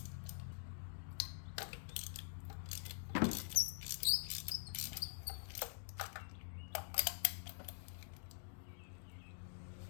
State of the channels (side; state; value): right; silent; digital silence